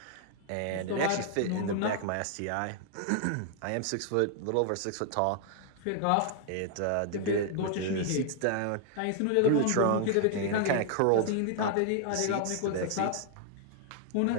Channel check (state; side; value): different; both; correlation 0.00